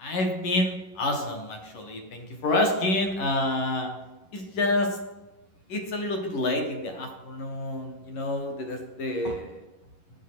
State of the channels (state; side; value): late; right; 11 ms